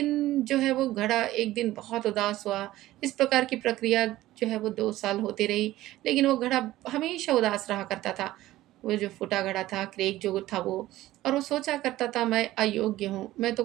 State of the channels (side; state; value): left; quieter; 15.8 dB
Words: जो है वो घड़ा एक दिन बहुत उदास हुआ। इस प्रकार की प्रक्रिया जो है वो 2 साल होती रही, लेकिन वो घड़ा हमेशा उदास रहा करता था। वो जो फूटा घड़ा था, क्रैक जो था वो, और वो सोचा करता था मैं अयोग्य हूँ, मैं तो